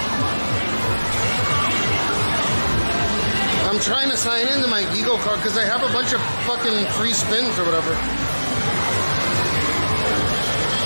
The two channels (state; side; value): inverted; both; correlation -1.00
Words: I'm trying to sign into my Eagle card because I have a bunch of fucking free spins or whatever.